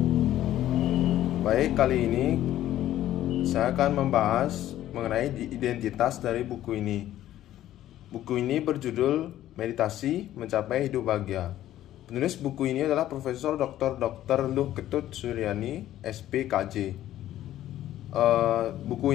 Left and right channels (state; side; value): quieter; right; 13.1 dB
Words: Baik, kali ini saya akan membahas mengenai identitas dari buku ini. Buku ini berjudul Meditasi Mencapai Hidup Bahagia. Penulis buku ini adalah Profesor Dr. Luh Ketut Suryani, SPKJ.